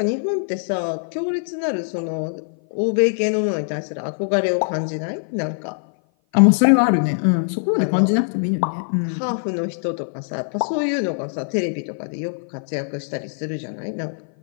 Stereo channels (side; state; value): right; silent; 56 dB below the other